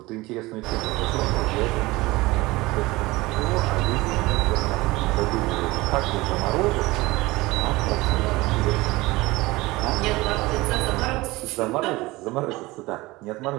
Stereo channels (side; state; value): left; quieter; 20.8 dB